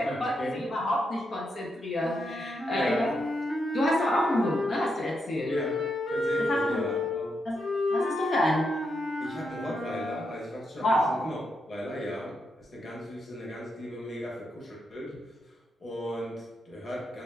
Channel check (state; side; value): normal; both; correlation 0.82